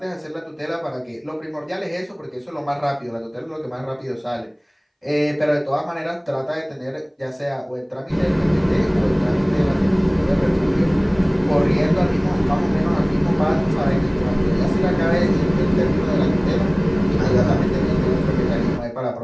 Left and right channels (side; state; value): both; identical; correlation 1.00